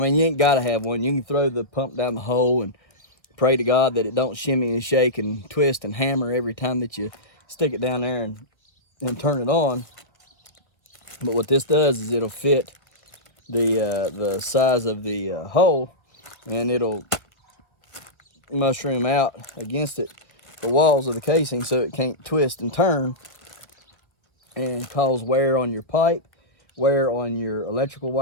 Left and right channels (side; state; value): right; late; 1.2 ms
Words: you ain't gotta have one. You can throw the pump down the hole and pray to God that it don't shimmy and shake and twist and hammer every time that you stick it down there and turn it on. But what this does is it'll fit the size of the hole, and it'll mushroom out against it, the walls of the casing, so it can't twist and turn and cause wear on your pipe, wear on your electrical